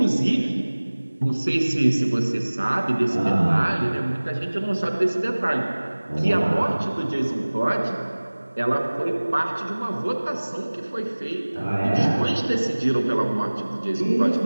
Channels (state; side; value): inverted; both; correlation -1.00